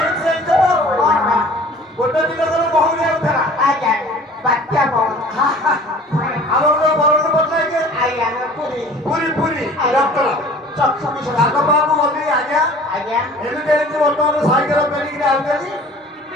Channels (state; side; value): normal; both; correlation 0.47